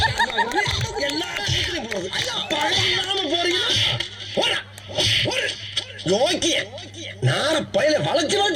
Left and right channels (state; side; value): identical; both; correlation 1.00